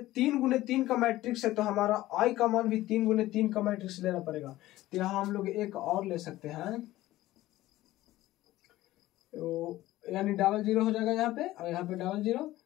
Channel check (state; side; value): quieter; right; 16.2 dB